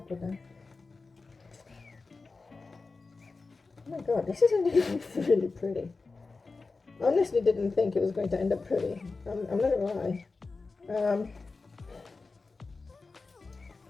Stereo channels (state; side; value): quieter; right; 4.0 dB